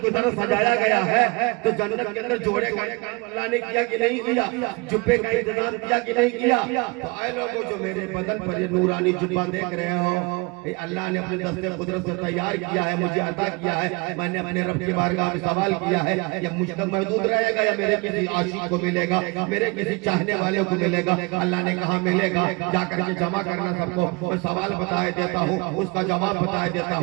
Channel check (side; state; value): left; quieter; 27.7 dB